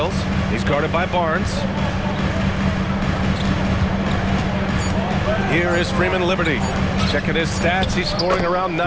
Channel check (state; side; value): identical; both; correlation 1.00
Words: He's guarded by Barnes. Here is Freeman Liberty. Checking his stats, he's scoring around